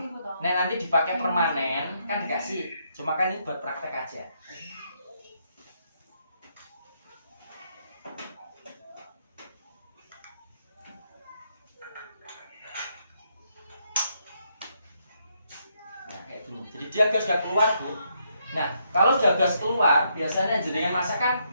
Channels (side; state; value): both; inverted; correlation -0.76